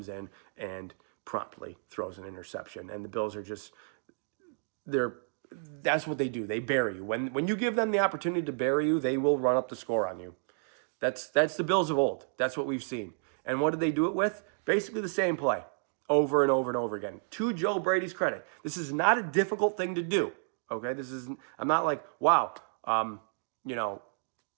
in and promptly throws an interception. And the Bills are just, that's what they do. They bury you. When you give them the opportunity to bury you, they will run up the score on you. That's the Bills of old. That's what we've seen. And what did they do it with? Basically the same play over and over and over again. To Joe Brady's credit, this is not a difficult thing to do. Okay, I'm not like, wow,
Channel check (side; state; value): left; silent; digital silence